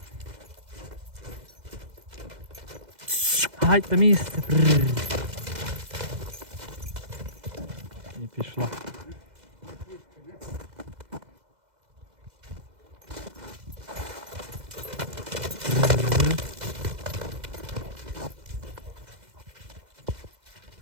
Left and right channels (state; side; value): late; left; 2.0 ms